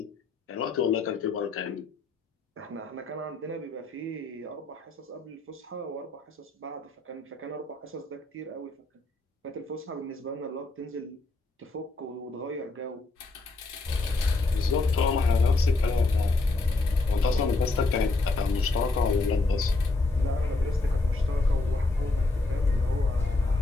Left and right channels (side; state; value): right; quieter; 3.2 dB